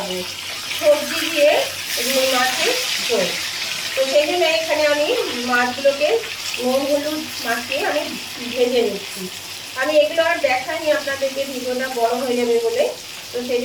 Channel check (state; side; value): identical; both; correlation 1.00